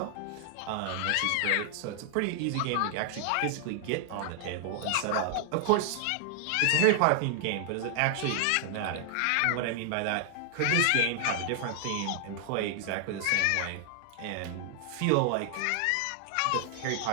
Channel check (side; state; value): both; different; correlation 0.00